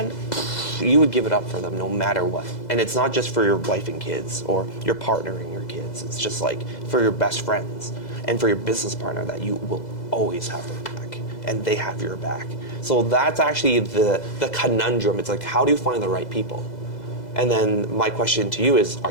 you would give it up for them no matter what. And it's not just for your wife and kids or your partner and your kids. It's just like for your best friends and for your business partner that you will always have their back and they have your back. So that's actually the conundrum. It's like, how do you find the right people? And then my question to you is, are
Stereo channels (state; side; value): late; right; 2.0 ms